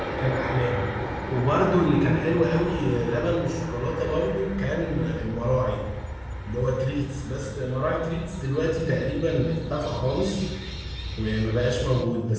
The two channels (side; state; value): both; identical; correlation 1.00